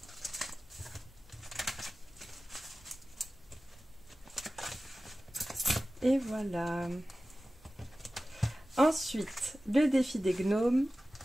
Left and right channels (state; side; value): normal; both; correlation 0.96